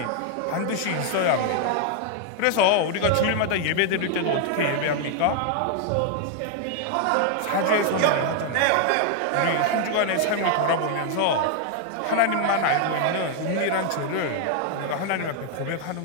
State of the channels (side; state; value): both; different; correlation 0.00